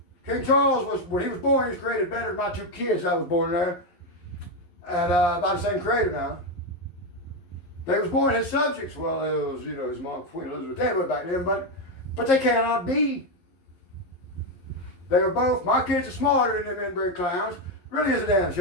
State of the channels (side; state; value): right; late; 11 ms